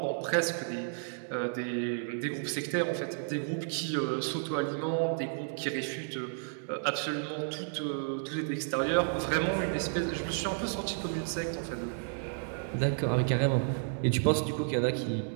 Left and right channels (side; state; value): left; silent; 56 dB below the other